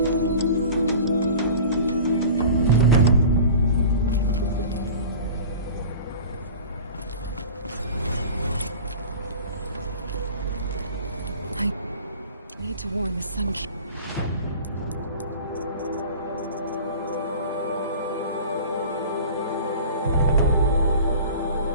need to warn the Sun King.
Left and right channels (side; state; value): both; inverted; correlation -0.39